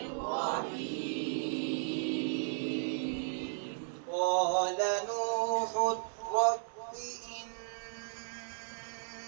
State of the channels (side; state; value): left; silent; digital silence